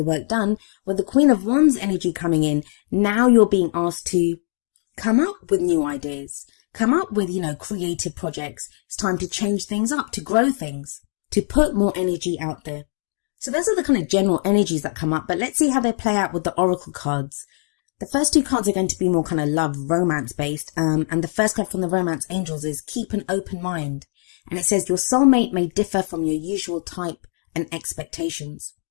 work done, with the Queen of Wands energy coming in, now you're being asked to come up with new ideas, come up with, creative projects. It's time to change things up, to grow things, to put more energy out there. So those are the kind of general energies that come up, but let's see how they play out with the oracle cards. The first two cards are going to be more kind of love, romance based. And the first card from the romance angels is keep an open mind. And it says your soulmate may differ from your usual type and expectations.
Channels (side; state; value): right; silent; digital silence